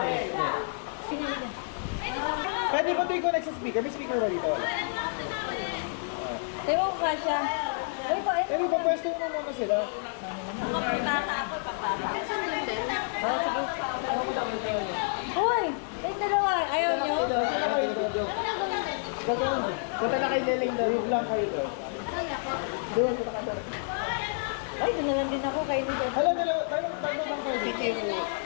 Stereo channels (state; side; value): silent; right; digital silence